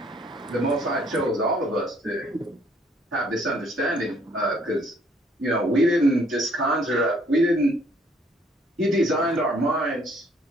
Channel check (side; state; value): both; normal; correlation 0.63